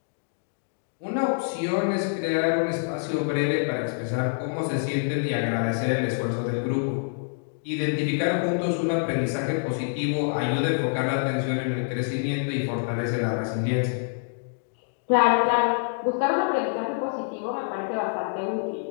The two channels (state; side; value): silent; right; digital silence